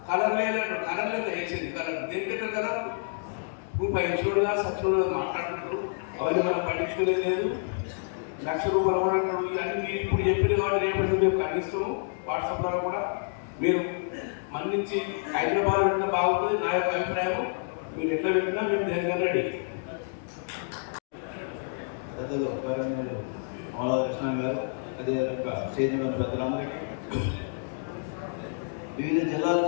కలర్ లేనట్టు, కలర్ లేదు వేసింది. కలర్ దేనికంటే కలర్ నువ్వు పైన సచ్చుడు మాట్లాడుతున్నాడు. అవన్నీ మనం పట్టించుకునే లేదు. ₹1,00,000 ఇవన్నీ ఇప్పుడు చెప్పిన వాడు రేపు ఖండిస్తున్నాం. వాట్సాప్ ద్వారా కూడా మీరు మన్నించి హైదరాబాద్ అంటే బాగుంటుంది నా యొక్క అభిప్రాయం. మీరు ఎట్లా పెట్టినా మేము జరగాలి. పెద్దలు కృష్ణ గారు, అదే సైన్యమైన పెద్దలందరికీ, వివిధ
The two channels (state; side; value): silent; right; digital silence